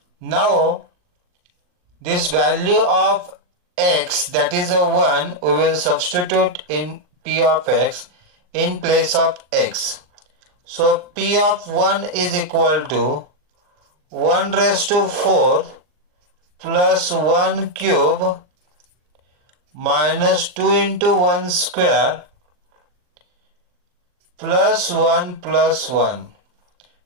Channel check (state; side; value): late; left; 39 ms